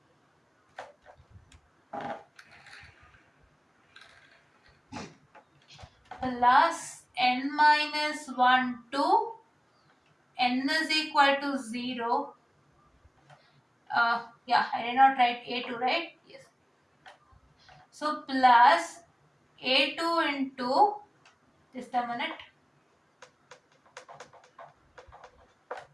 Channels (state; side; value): identical; both; correlation 1.00